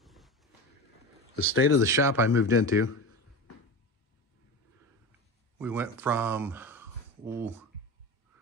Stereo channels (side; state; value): both; normal; correlation 0.26